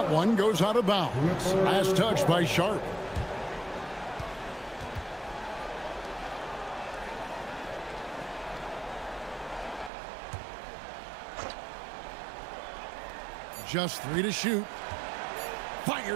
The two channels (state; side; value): drops out; left; at 9.9 s